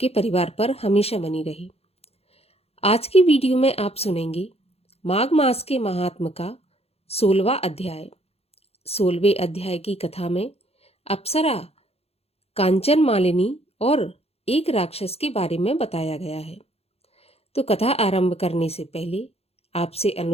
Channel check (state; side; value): late; right; 0.29 ms